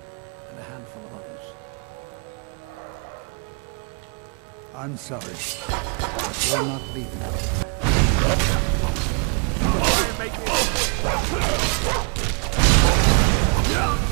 and a handful of others. I'm sorry, but we're not leaving.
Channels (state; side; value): quieter; left; 37.5 dB